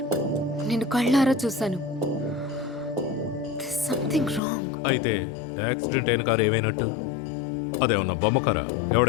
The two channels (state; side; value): drops out; right; at 4.4 s